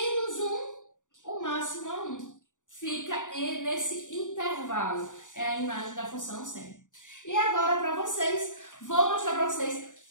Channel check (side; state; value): right; late; 0.86 ms